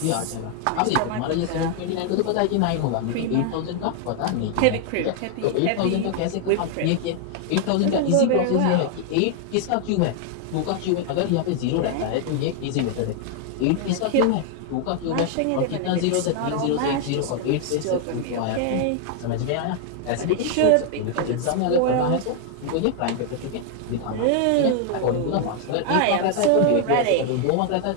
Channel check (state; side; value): different; both; correlation 0.00